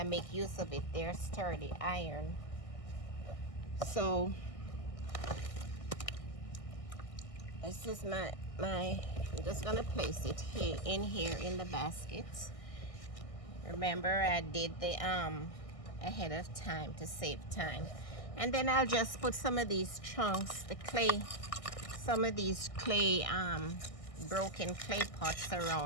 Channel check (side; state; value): right; late; 1.6 ms